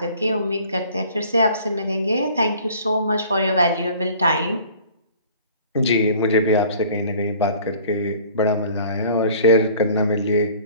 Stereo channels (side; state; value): both; inverted; correlation -0.50